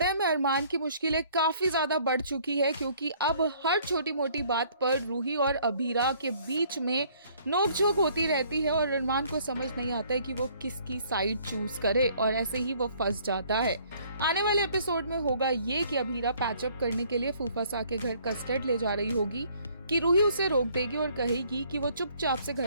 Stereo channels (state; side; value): inverted; both; correlation -0.60